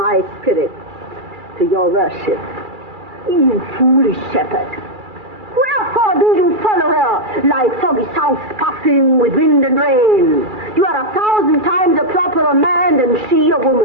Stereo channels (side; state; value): left; late; 2.3 ms